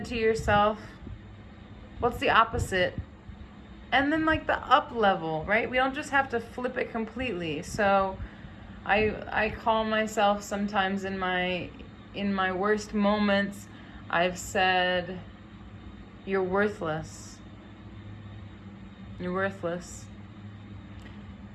to yourself. What's the opposite? And then like the up level, right? We don't just have to flip it completely. So I call myself sometimes in my worst moments, I've said, you're worthless. You're worthless.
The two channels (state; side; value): identical; both; correlation 1.00